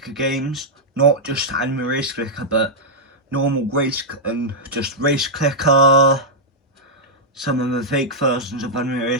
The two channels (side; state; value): both; normal; correlation -0.06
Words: games. Not just anime race clicker, but normal race and just race clicker. Some of the fake versions of anime